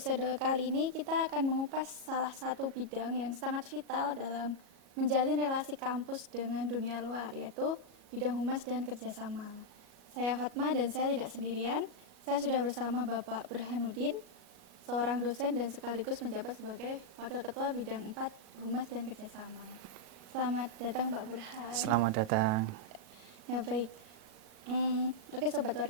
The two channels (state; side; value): late; left; 37 ms